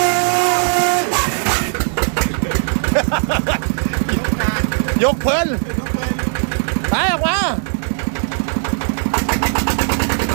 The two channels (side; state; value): left; silent; 56 dB below the other